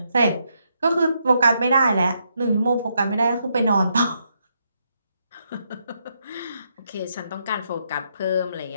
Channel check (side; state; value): both; inverted; correlation -0.78